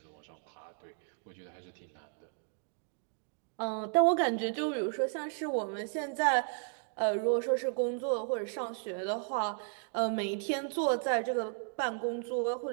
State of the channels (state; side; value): silent; left; 55 dB below the other